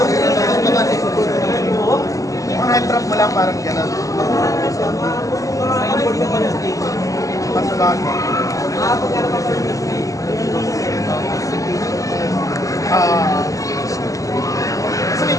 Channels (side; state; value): right; late; 0.16 ms